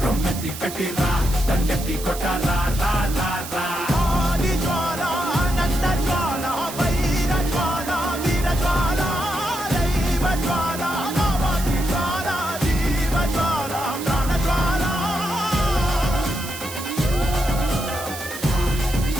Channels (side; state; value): right; noise; hiss, 10 dB below the sound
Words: రొమ్మెత్తి పెట్టిరా దండెత్తి కొట్టరా